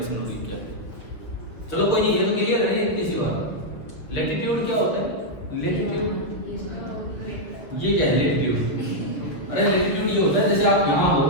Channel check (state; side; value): late; right; 6.6 ms